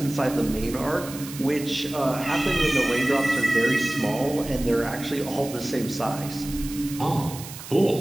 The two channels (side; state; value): right; noise; hiss, 13 dB below the sound